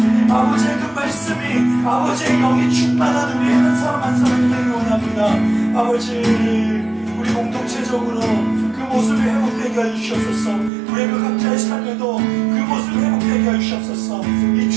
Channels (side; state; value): left; drops out; at 10.7 s